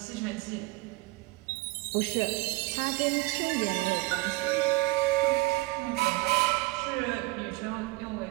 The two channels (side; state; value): left; quieter; 22.2 dB